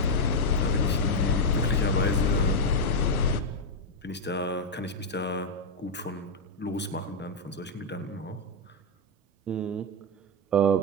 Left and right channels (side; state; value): both; normal; correlation 0.01